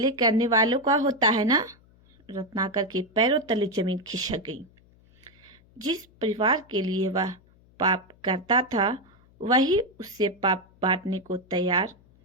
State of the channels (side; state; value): left; noise; hum, 29 dB below the sound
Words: करने वालों का होता है ना? रत्नाकर के पैरों तले जमीन खिसक गई। जिस परिवार के लिए वह पाप करता था, वही उससे पाप बांटने को तैयार